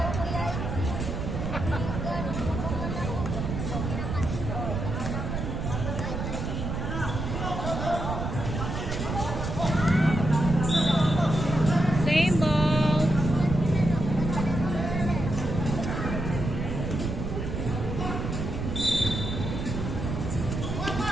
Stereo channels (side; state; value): right; noise; rumble, 3 dB below the sound